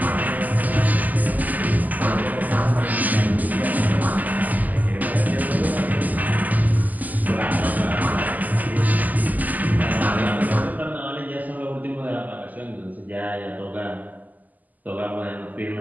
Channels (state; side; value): late; left; 0.081 ms